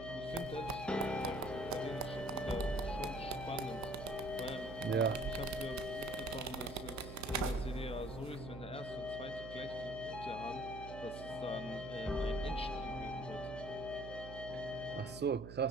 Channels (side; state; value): right; noise; hum, 10 dB below the sound